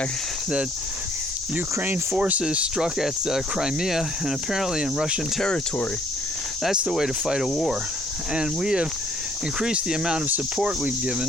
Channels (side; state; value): both; normal; correlation 0.63